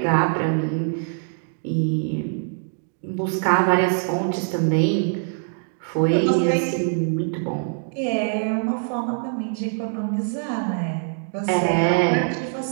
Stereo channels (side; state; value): left; silent; digital silence